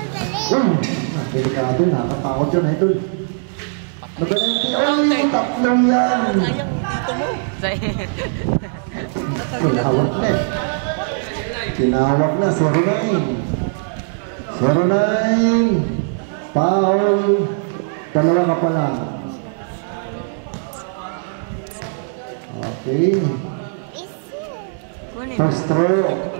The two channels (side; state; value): left; silent; digital silence